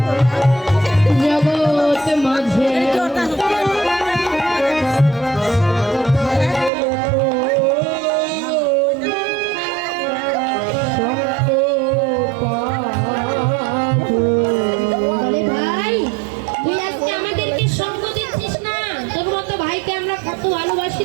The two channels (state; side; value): drops out; left; at 6.7 s